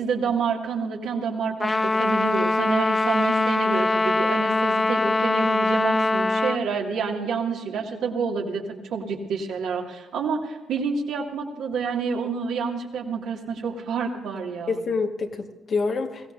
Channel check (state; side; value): normal; both; correlation 0.82